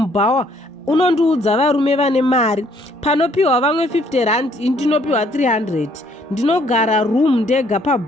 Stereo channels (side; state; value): both; normal; correlation 0.65